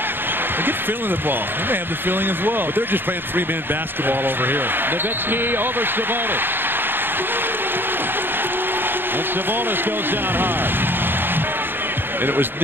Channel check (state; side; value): late; left; 0.099 ms